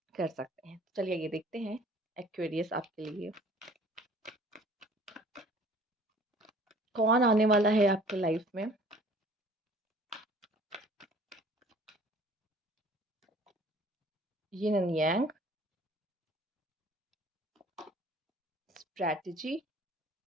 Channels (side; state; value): both; normal; correlation 0.51